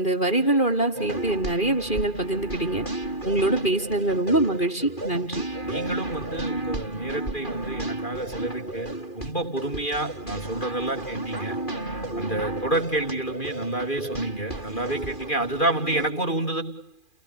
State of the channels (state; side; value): late; right; 2.4 ms